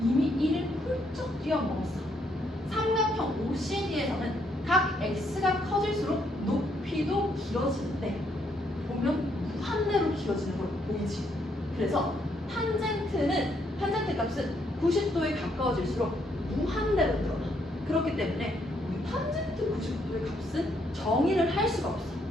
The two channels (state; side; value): normal; both; correlation 0.73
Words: 이미 1을 훌쩍 뛰어넘었어. 삼각형 OCD에서는 각 X가 커질수록 높이도 길어지는데 보면 무한대로 길어지는 걸 보이지. 그래서 탄젠트 값은 90도에 가까워질수록 무한대로 늘어나. 그렇기 때문에 우리 탄젠트 90도의 값은 정의를 할 수가 없어.